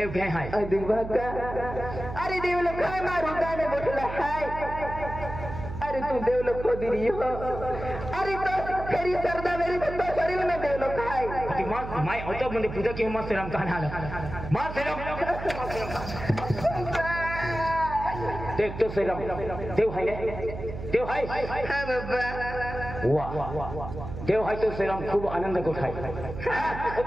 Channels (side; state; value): right; noise; hum, 8 dB below the sound